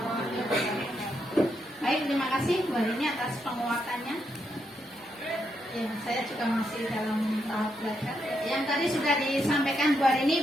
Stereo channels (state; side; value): normal; both; correlation 0.80